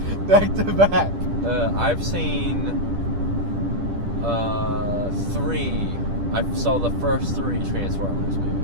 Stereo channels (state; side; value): late; left; 10 ms